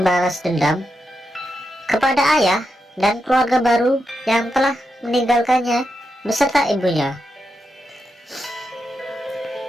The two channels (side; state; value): both; normal; correlation 0.86